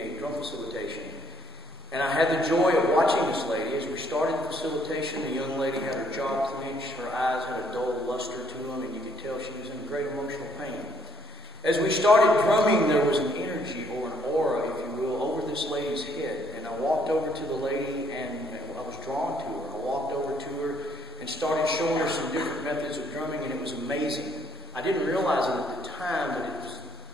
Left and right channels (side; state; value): both; normal; correlation 0.69